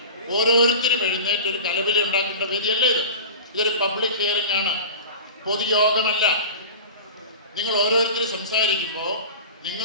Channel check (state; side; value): inverted; both; correlation -0.33